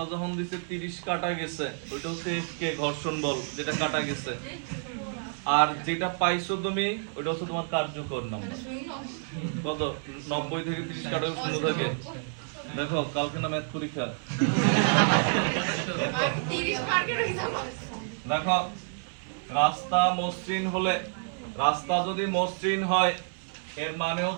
যখন দিছে 30 কাটা গেছে, ওইটা হচ্ছে এফ কে ঘর্ষণ বল, যেটা কাটা গেছে। আর যেটা পাইছো তুমি ওইটা হচ্ছে তোমার কার্যকর নাম্বার। কত? 90 থেকে 30 কাটা শূন্য থাকে। দেখো কালকে না ম্যাথ পরীক্ষা। দেখো রাস্তা মসৃণ হলে, রাস্তা যদি মসৃণ হয় এর মানে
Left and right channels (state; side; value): silent; left; 59 dB below the other